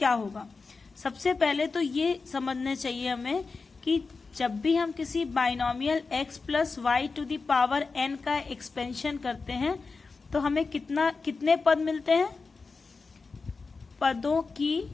होगा? सबसे पहले तो ये समझना चाहिए हमें कि जब भी हम किसी binomial x + y to the power n का एक्सपेंशन करते हैं तो हमें कितने पद मिलते हैं? पदों की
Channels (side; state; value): right; quieter; 4.3 dB